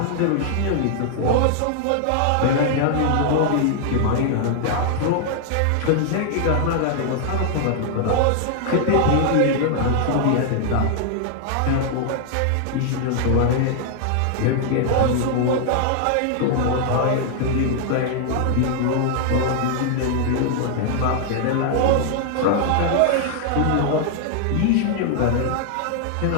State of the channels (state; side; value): different; both; correlation 0.00